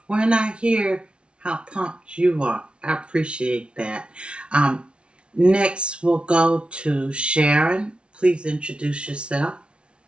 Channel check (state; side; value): late; left; 0.058 ms